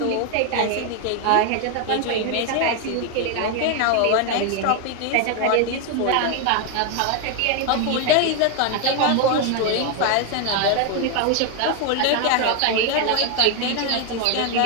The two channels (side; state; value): both; different; correlation 0.01